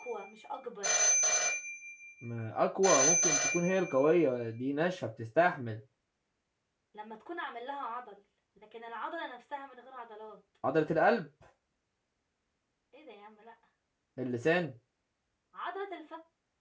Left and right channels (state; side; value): identical; both; correlation 1.00